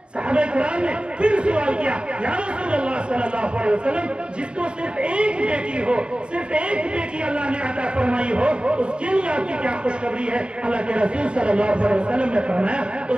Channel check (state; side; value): late; left; 0.053 ms